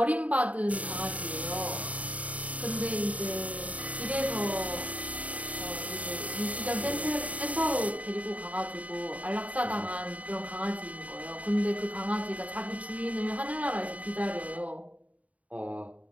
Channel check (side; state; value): left; late; 0.069 ms